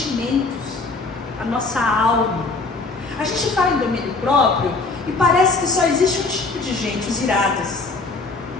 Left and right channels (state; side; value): quieter; right; 3.7 dB